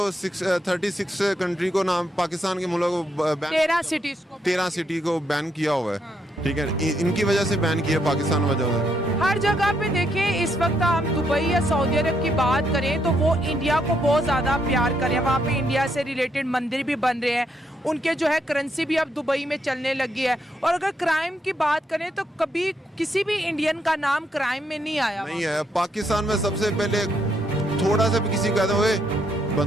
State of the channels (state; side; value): normal; both; correlation 0.76